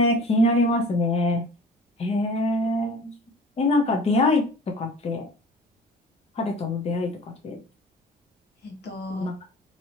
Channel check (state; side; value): normal; both; correlation 0.44